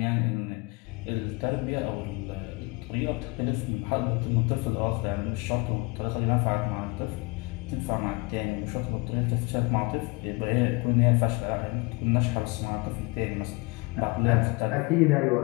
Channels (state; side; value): quieter; right; 26.8 dB